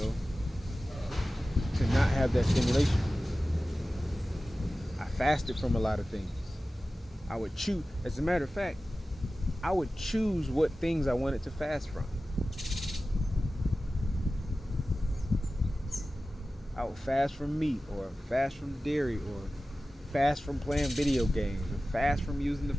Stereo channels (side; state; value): both; normal; correlation 0.95